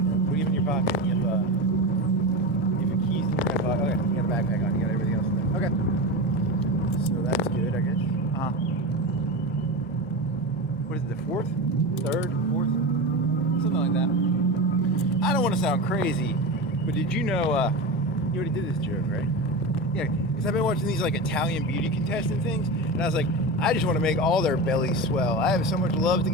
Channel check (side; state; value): both; normal; correlation 0.23